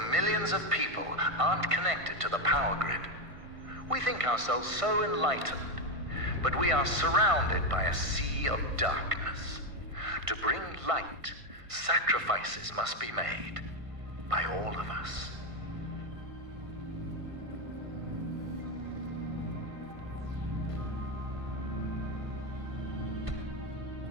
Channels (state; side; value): late; left; 1.5 ms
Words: millions of people aren't connected to the power grid. We think ourselves so enlightened, but we are surrounded by a sea of darkness. To bring light, sacrifices must be made by all of us.